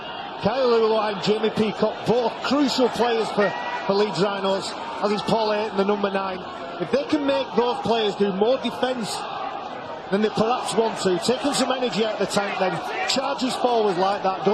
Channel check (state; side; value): identical; both; correlation 1.00